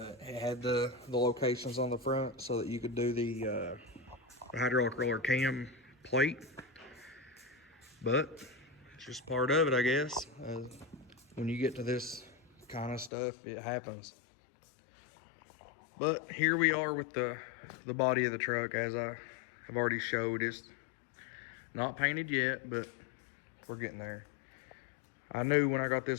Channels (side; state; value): right; drops out; at 13.1 s